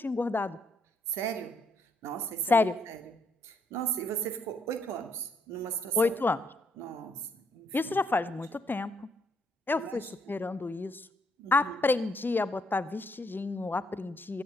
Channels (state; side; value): normal; both; correlation 0.71